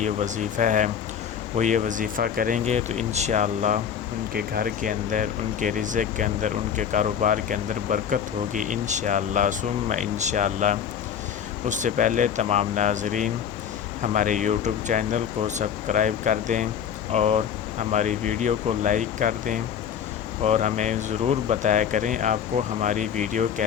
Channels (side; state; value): right; quieter; 8.3 dB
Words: وظیفہ ہے۔ وہ یہ وظیفہ کریں گے تو انشاءاللہ ان کے گھر کے اندر، ان کے رزق کے اندر، ان کے کاروبار کے اندر برکت ہوگی انشاءاللہ ثم انشاءاللہ۔ اس سے پہلے تمام ناظرین ہمارے یوٹیوب چینل کو سبسکرائب کر دیں اور ہماری ویڈیو کو لائک کر دیں، اور ہمیں ضرور بتایا کریں آپ کو ہماری ویڈیو